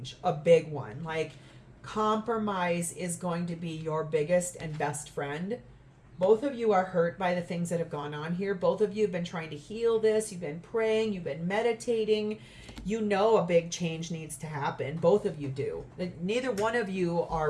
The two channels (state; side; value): identical; both; correlation 1.00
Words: a big one. Like compromise is going to be your biggest and best friend. Both of you are hurt by the things that have gone on here. Both of you have been trying to heal this. You've been praying. You've been meditating. You know a big change needs to happen. Both of you do. Neither one of you are